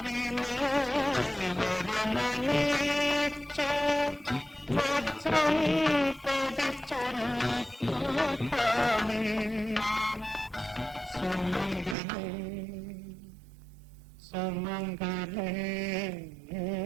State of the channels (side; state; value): left; drops out; at 12.0 s